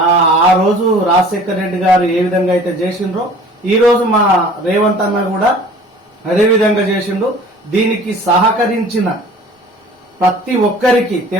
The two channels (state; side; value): normal; both; correlation 0.48